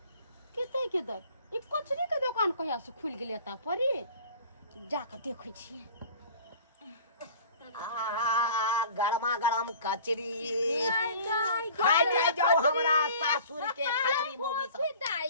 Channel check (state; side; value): inverted; both; correlation -0.45